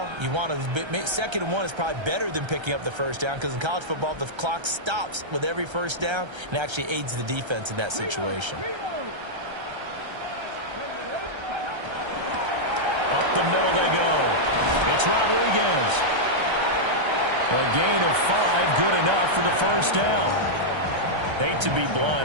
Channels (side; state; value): left; late; 1.3 ms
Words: you want to 2nd and 1 is probably better than picking up the 1st down because in college football, the clock stops with every 1st down and actually aids the defense in that situation. Up the middle they go. It's Rodriguez. A gain of 5, good enough for the 1st down. Hate to be